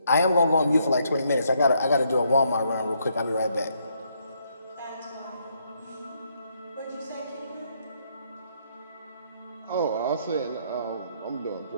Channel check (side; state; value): both; inverted; correlation -0.73